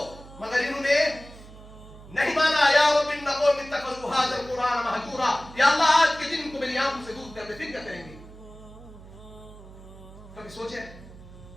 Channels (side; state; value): right; noise; hum, 18 dB below the sound